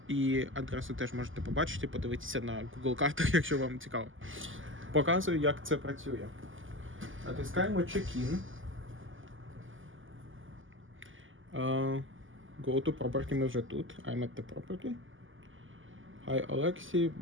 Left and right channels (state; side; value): late; left; 0.58 ms